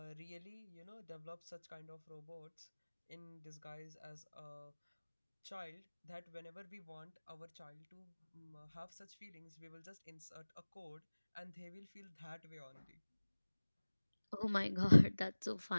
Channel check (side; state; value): both; inverted; correlation -1.00